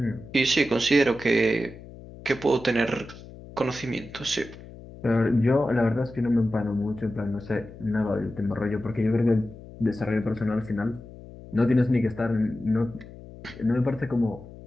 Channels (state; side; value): noise; left; hum, 17 dB below the sound